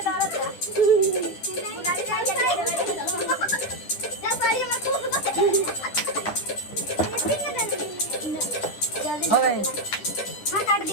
हो गई। हाँ काट दी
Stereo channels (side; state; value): right; late; 9.8 ms